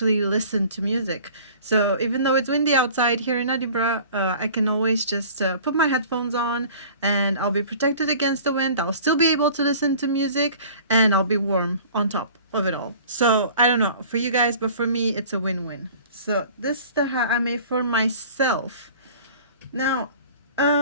listen to music. So even though it's windy outside here in Edinburgh, I can always just put my headphones on and I'll be protected against the wind. I'll still be able to listen to music and I'll be warm on top of it all. So I don't know for you guys, but for me, it's a win-win. So this is the hat I made for myself. Now,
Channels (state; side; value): inverted; both; correlation -0.46